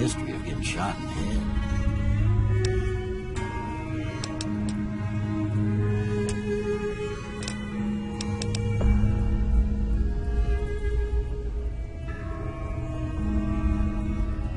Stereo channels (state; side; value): identical; both; correlation 1.00